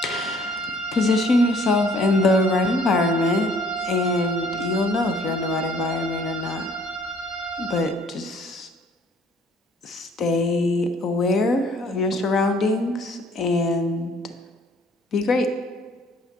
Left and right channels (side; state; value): both; normal; correlation 0.58